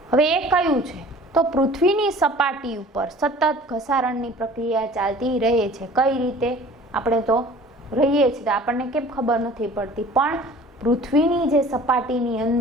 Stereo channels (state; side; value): normal; both; correlation 0.47